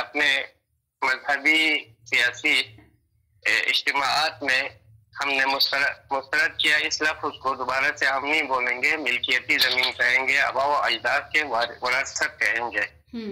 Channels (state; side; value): identical; both; correlation 1.00